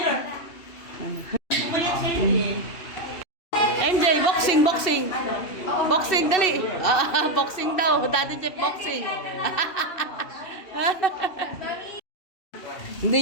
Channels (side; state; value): right; late; 2.8 ms